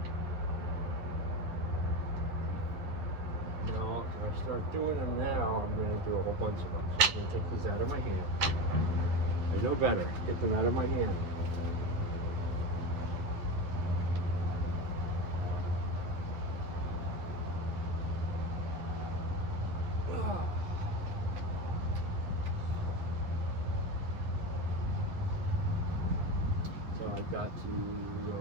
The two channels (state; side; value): late; left; 10 ms